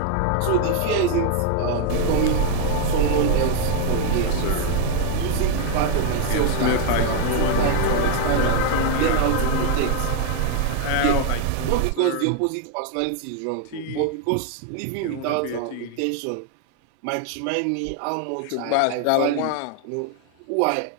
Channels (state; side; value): different; both; correlation 0.00